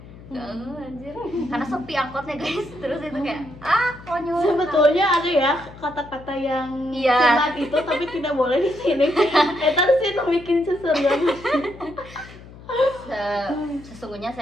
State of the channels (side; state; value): left; noise; hum, 18 dB below the sound